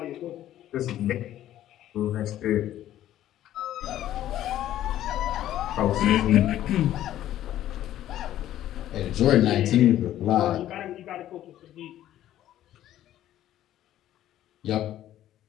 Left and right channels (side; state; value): right; quieter; 12.7 dB